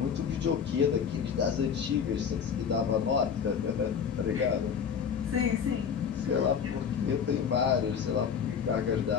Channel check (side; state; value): right; quieter; 7.1 dB